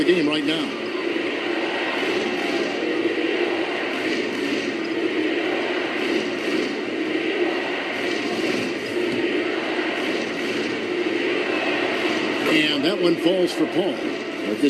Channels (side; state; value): both; identical; correlation 1.00